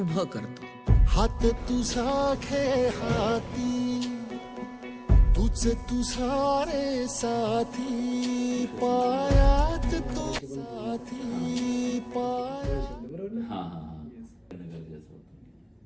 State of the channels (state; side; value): identical; both; correlation 1.00